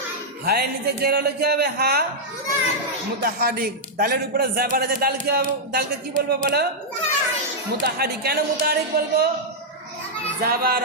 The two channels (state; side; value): normal; both; correlation -0.06